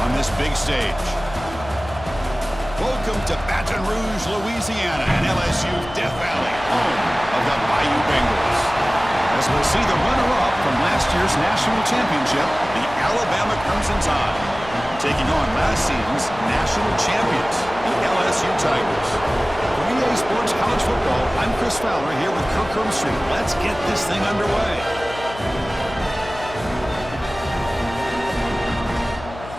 on this big stage? Welcome to Baton Rouge, Louisiana, and LSU Death Valley, home of the Bayou Bengals. As we'll see the runner-up from last year's national championship, the Alabama Crimson Tide, taking on last season's national champions, the LSU Tigers. For EA Sports College Football, I'm Chris Fowler here with Kirk Herbstreit. Let's get this thing underway.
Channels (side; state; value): left; noise; hum, 14 dB below the sound